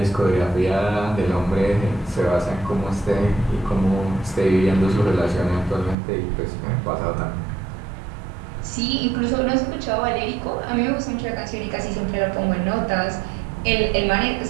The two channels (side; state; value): left; drops out; at 6.0 s